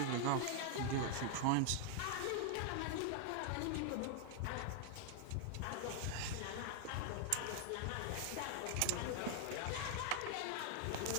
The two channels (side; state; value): both; different; correlation 0.00